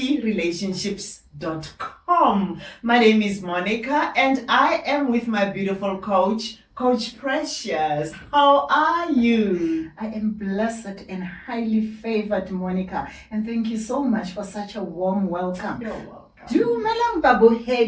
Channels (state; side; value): identical; both; correlation 1.00